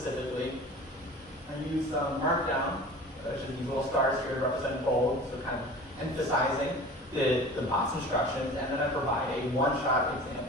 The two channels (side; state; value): both; normal; correlation 0.40